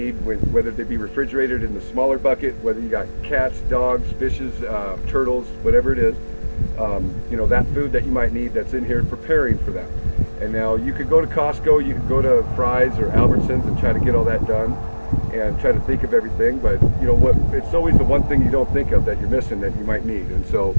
whether they be refrigerated in the smaller bucket, whether you got cats, dogs, fishes, turtles, whatever it is, that food that you might need that's in here, preparing for that. And now you could go to Costco, you could go to Fry's or Albertsons and try to get all that done and try to think of everything, but it's always the one thing you don't think of that you're missing that you might need. And so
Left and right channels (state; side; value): inverted; both; correlation -1.00